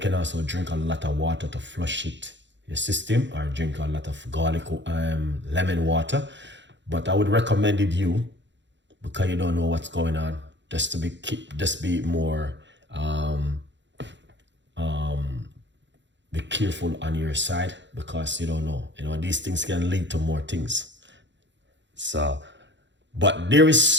also drink a lot of water to flush it your system, or drink a lot of garlic lemon water. But I would recommend it you, because you don't know what's going on, just be more be careful on your side, because you don't know, you know, these things can lead to more things. So, but there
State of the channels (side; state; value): left; late; 0.53 ms